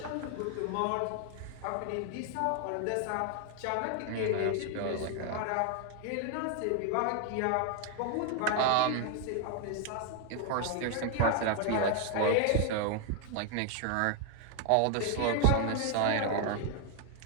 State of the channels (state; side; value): different; both; correlation 0.00